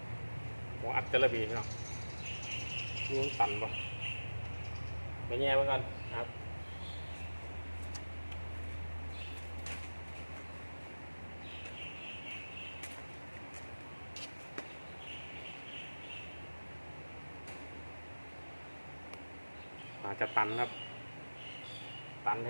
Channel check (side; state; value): both; inverted; correlation -1.00